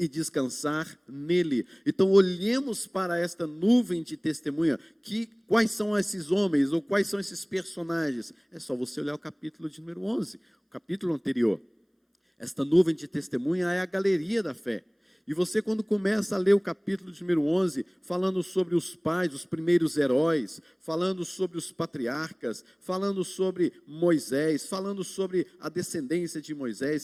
descansar nele. Então olhemos para esta nuvem de testemunha, quais são esses homens, ou quais são esses personagens? É só você olhar o capítulo de número 11, o capítulo anterior. Esta nuvem de testemunha é a galeria da fé. E você, quando começa a ler o capítulo de número 11, falando sobre os pais, os primeiros heróis, falando sobre os patriarcas, falando sobre Moisés, falando sobre a descendência de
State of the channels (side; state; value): both; identical; correlation 1.00